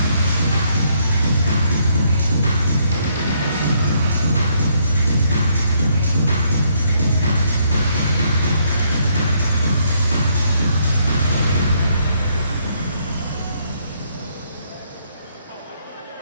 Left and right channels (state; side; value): inverted; both; correlation -0.71